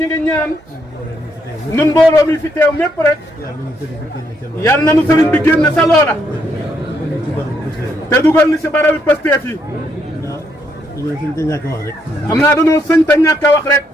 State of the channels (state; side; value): normal; both; correlation 0.75